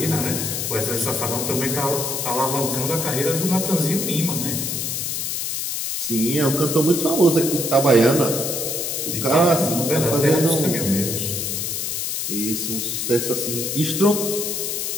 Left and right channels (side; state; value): left; noise; hiss, 2 dB below the sound